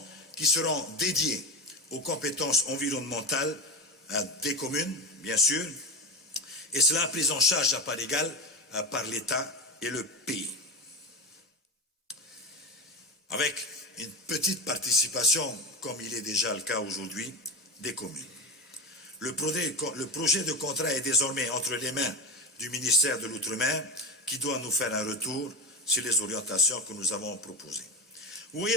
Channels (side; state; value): both; normal; correlation 0.20